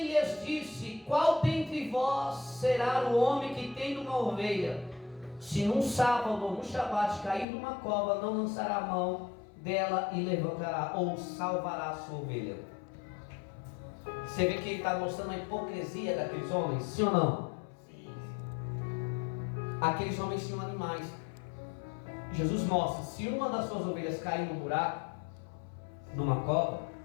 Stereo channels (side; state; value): right; drops out; at 7.5 s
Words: lhes disse: qual dentre vós será o homem que tendo uma ovelha, se num sábado ou num shabat cair numa cova, não lançará a mão dela e levantará ou salvará a sua ovelha? Você vê que ele está mostrando a hipocrisia daqueles homens, sim ou não? Sim. Aqueles homens tinham animais. Jesus mostra: se uma das suas ovelhas cair num buraco, numa cova,